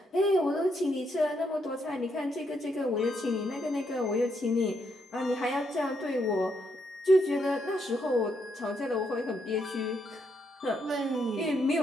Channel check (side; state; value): both; normal; correlation 0.77